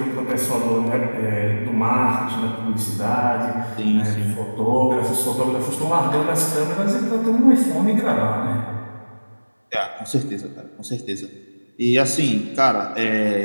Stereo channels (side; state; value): both; inverted; correlation -1.00